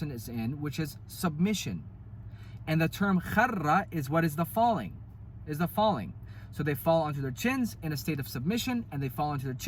is in, which is submission. And the term kharra is what is the falling. So they fall onto their chins in a state of submission, and they fall onto their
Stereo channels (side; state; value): both; identical; correlation 1.00